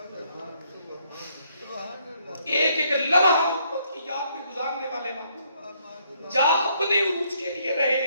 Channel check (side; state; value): both; inverted; correlation -0.70